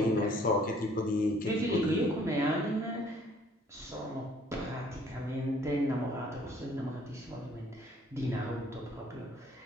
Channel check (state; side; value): normal; both; correlation 0.59